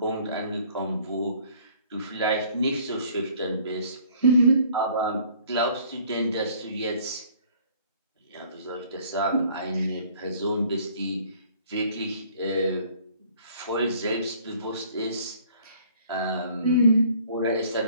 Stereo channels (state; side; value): inverted; both; correlation -0.56